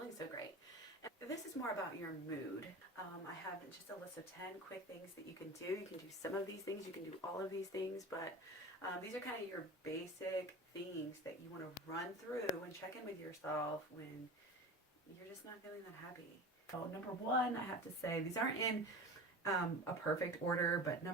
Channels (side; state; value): both; normal; correlation 0.32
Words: so great. And this is more about your mood. I have just a list of 10 quick things that you can do. You can do some of these things, you can do all of these things, but these are kind of your basic things that you want to run through and check in with yourself when you're just not feeling that happy. So number one, I have to say, these aren't in a perfect order, but